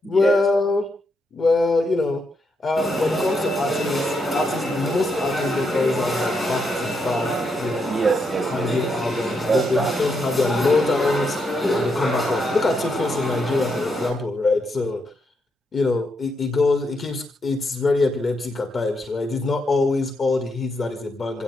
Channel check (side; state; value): both; normal; correlation 0.80